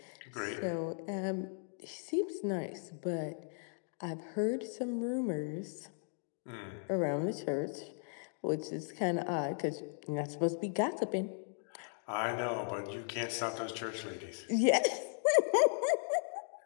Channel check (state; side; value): silent; right; 53 dB below the other